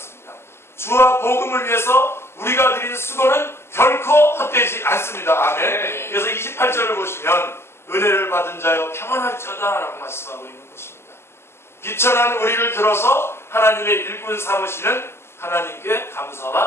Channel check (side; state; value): right; late; 0.12 ms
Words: 주와 복음을 위해서 우리가 드린 수고는 결코 헛되지 않습니다. 아멘. 그래서 28절을 보시면 은혜를 받은 자여 평안할지어다 라고 말씀하고 있는 것입니다. 비천한 우리를 들어서 하나님의 일꾼 삼으시는 하나님께